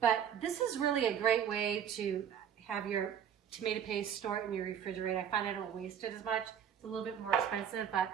But this is really a great way to have your tomato paste stored in your refrigerator. I find I don't waste it as much. It's a little bit more expensive, but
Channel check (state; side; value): quieter; left; 8.8 dB